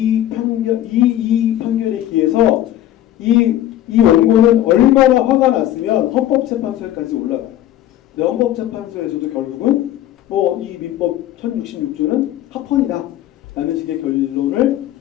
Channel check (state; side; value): quieter; right; 12.8 dB